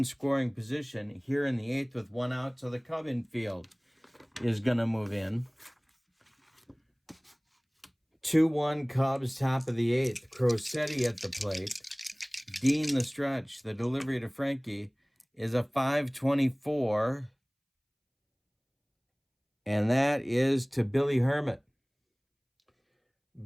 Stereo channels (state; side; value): identical; both; correlation 1.00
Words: scoring position here in the eighth with 1 out. So the Cub infield is going to move in. 2-1 Cubs, top of the eighth. Crosetti at the plate. Dean the stretch. The delivery to Frankie is a 5.24. And that is to Billy Herman.